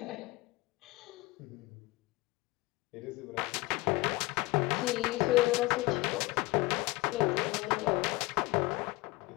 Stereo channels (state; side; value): quieter; right; 21.8 dB